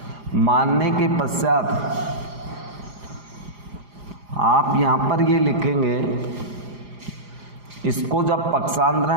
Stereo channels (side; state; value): left; late; 4.9 ms